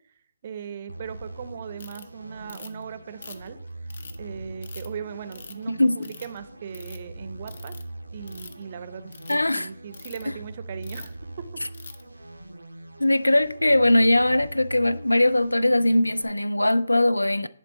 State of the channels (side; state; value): both; inverted; correlation -0.97